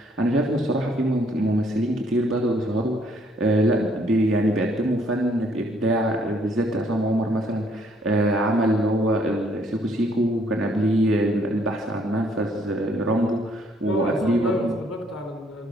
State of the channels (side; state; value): both; normal; correlation 0.66